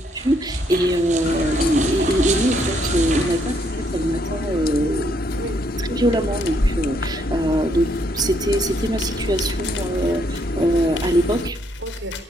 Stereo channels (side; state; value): both; normal; correlation 0.72